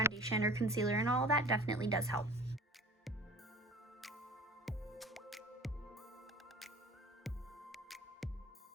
or concealer and all that definitely does help.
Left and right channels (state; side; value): normal; both; correlation 0.43